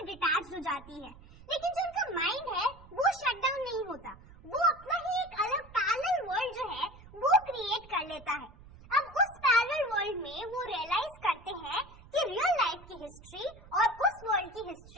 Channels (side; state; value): right; noise; rumble, 21 dB below the sound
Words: डिटैच हो जाती है, लेकिन जो उनका माइंड है वो शट डाउन नहीं होता, वो अपना ही एक अलग पैरेलल वर्ल्ड जो है वो क्रिएट कर लेता है। अब उस पैरेलल वर्ल्ड में वो रियलाइज करते हैं कि रियल लाइफ की हिस्ट्री और उस वर्ल्ड की